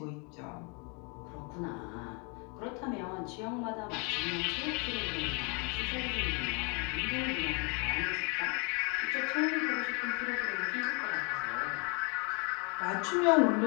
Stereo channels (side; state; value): right; quieter; 33.5 dB